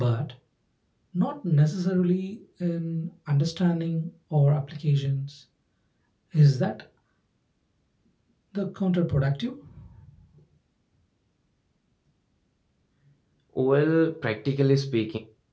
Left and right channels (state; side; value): identical; both; correlation 1.00